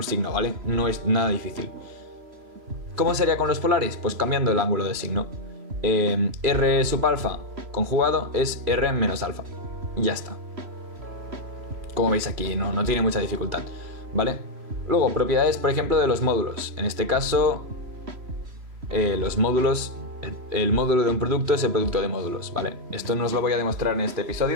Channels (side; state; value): left; late; 3.0 ms